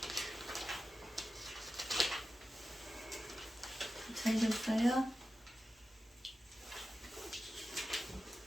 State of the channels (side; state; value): both; normal; correlation 0.92